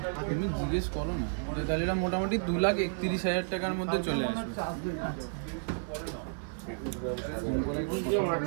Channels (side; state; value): left; silent; 57 dB below the other